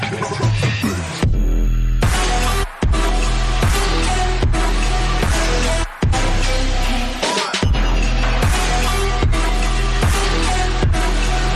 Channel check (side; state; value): both; identical; correlation 1.00